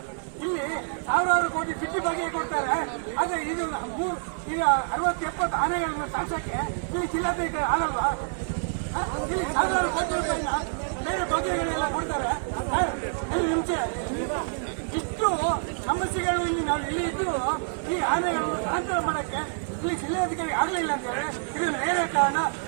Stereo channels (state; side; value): silent; left; digital silence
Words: ಇಲ್ಲಿ ಸಾವಿರಾರು ಕೋಟಿ ಬಿಟ್ಟಿ ಬಗ್ಗೆ ಕೊಡ್ತಾರೆ. ಆದ್ರೆ ಇದು ಈಗ 60-70 ಆನೆಗಳನ್ನು ಸಾಕ್ಸಕ್ಕೆ ಇಲ್ಲಿ ಜಿಲ್ಲಾಧಿಕಾರಿ ಆಗಲ್ವಾ? ಇಲ್ಲಿ ಸಾವಿರಾರು ಕೋಟಿ ರೂಪಾಯಿನ ಬೇರೆ ಬಗೆಗಳೆಲ್ಲ ಕೊಡ್ತಾರೆ. ಮುಂಚೆ ಇಷ್ಟು ಸಮಸ್ಯೆಗಳು ಇಲ್ಲಿ ನಾವು ಇಲ್ಲಿ ಇದ್ದು ಈ ಆನೆಗಳನ್ನು ಸ್ಥಳಾಂತರ ಮಾಡಕ್ಕೆ ಈ ಜಿಲ್ಲಾಧಿಕಾರಿ ಆಗಲಿಲ್ಲ ಅಂತ ಹೇಳಿ ಇದು ನೇರ ಕಾರಣ.